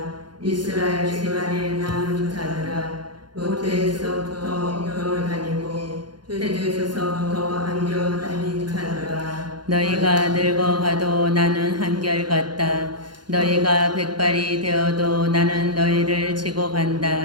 이스라엘 집안에 남은 자들아, 모태에서부터 겨울 다니고 태주에서부터 안겨 다닌 자들아, 너희가 늙어가도 나는 한결같다. 너희가 백발이 되어도 나는 너희를 지고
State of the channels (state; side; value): late; left; 0.71 ms